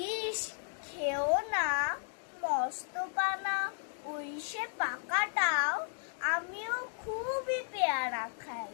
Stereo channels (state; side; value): silent; right; digital silence